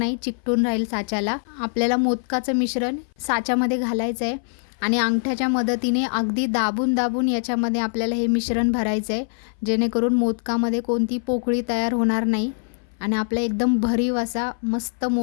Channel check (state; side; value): silent; right; 59 dB below the other